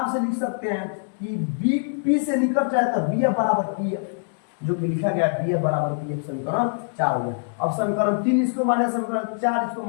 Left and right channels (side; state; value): right; silent; digital silence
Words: से लिख सकते हैं कि B P से निकट है तो BF बराबर PF, जो कि लिखा गया BF बराबर PF, समीकरण 4 हो गया। अब समीकरण 3 इसको माने, समीकरण 4 इसको